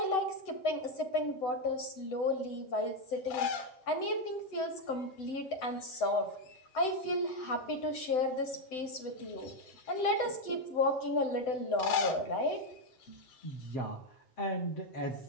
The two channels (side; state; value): right; late; 7.9 ms